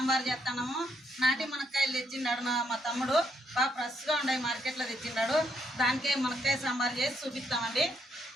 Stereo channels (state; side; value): normal; both; correlation 0.76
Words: చేస్తున్నాము. నాటి మునక్కాయలు తెచ్చిండాడు మా తమ్ముడు. బాగా ఫ్రెష్గా ఉన్నాయి, మార్కెట్లో తెచ్చిండాడు. దానికే మునక్కాయ సాంబార్ చేసి చూపిస్తామండి.